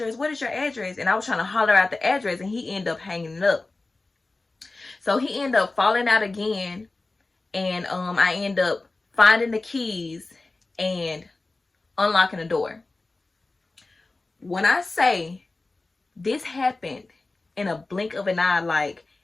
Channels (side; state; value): right; quieter; 3.3 dB